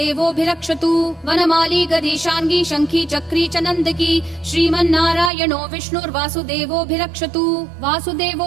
वनमाली गदीशाङ्गी शङ्खी चक्री च नन्दकी श्रीमन्नारायणो विष्णुर्वासुदेवोऽभिरक्षतु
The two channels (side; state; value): left; drops out; at 5.3 s